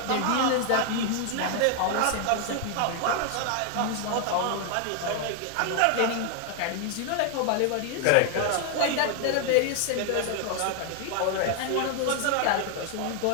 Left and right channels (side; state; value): both; different; correlation 0.00